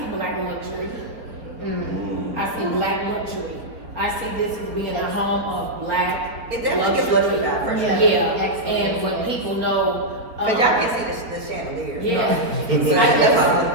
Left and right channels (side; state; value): left; late; 4.3 ms